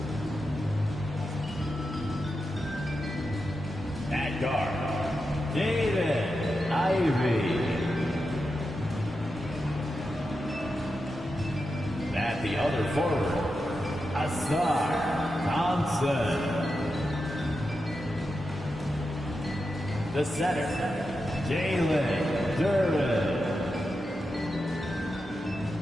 At guard, David Ivey. At the other forward, Asar Thompson. The center, Jalen Duren.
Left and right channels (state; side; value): normal; both; correlation 0.89